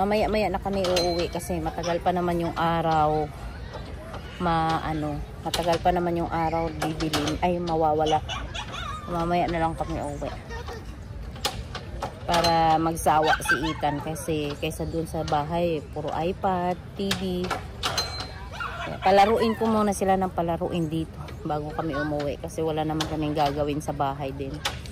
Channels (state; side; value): identical; both; correlation 1.00